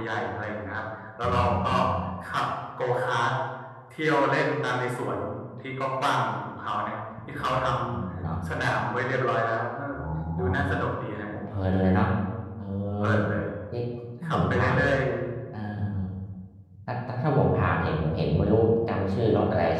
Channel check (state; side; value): identical; both; correlation 1.00